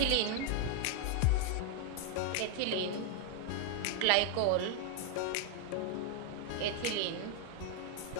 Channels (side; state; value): both; different; correlation 0.01